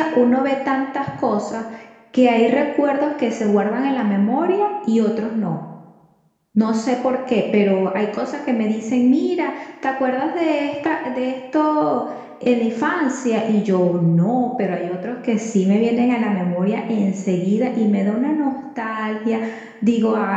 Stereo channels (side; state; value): both; identical; correlation 1.00